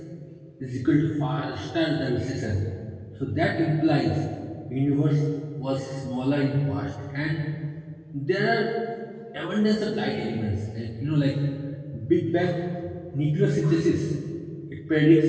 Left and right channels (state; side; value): identical; both; correlation 1.00